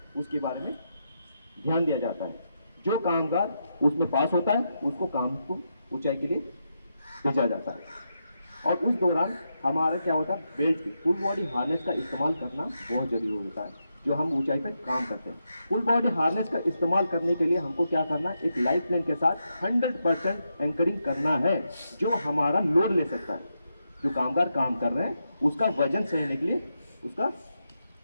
उसके बारे में ध्यान दिया जाता है। जो कामगार उसमें पास होता है उसको काम को ऊंचाई के लिए भेजा जाता है। और उस दौरान हमारा क्या होता है, बेल्ट की फुल बॉडी हार्नेस का इस्तेमाल करना बहुत जरूरी होता है जो हम ऊंचाई पर काम करते हैं। फुल बॉडी हार्नेस का इस्तेमाल करने के लिए हमको क्या करना है, एक लाइफ लाइन के साथ 100% एंकरिंग करना है जो हमारा लोड ले सकता है। जो कामगार काम कर रहे हैं उसका वजन सहने के लिए उसका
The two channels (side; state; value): both; inverted; correlation -0.84